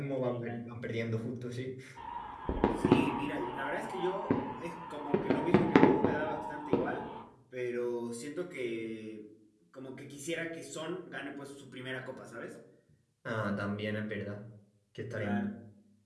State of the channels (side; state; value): both; identical; correlation 1.00